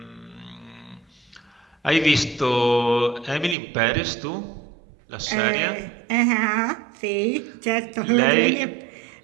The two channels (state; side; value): drops out; left; at 3.6 s